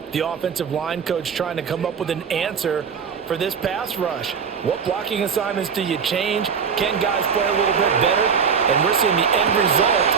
the offensive line coach trying to come up with an answer for this pass rush? What blocking assignments do you change? Can guys play a little bit better? And we're seeing the end result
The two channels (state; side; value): quieter; left; 6.5 dB